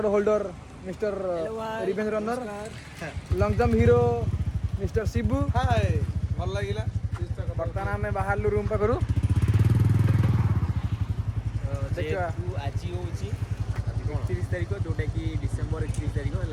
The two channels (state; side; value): identical; both; correlation 1.00